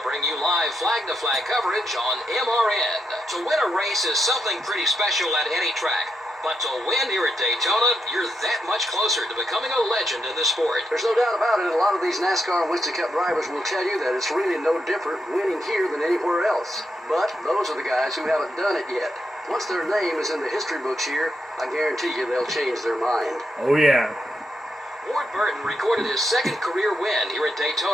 bring you live flag-to-flag coverage on MRN. To win a race is something pretty special at any track. But to win here at Daytona, you're that much closer to becoming a legend in the sport. There's no doubt about it. A lot of these NASCAR and Winston Cup drivers will tell you that it's really no different winning here than anywhere else. But those are the guys who haven't done it yet. Once their name is in the history books here, I guarantee you they'll change their mind. Oh, yeah. Ward Burton recorded his second career win here at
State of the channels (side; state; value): both; normal; correlation 0.82